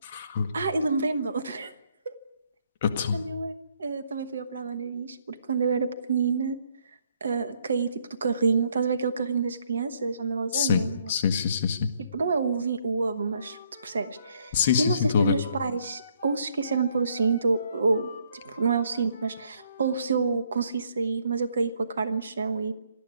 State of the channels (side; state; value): both; inverted; correlation -0.68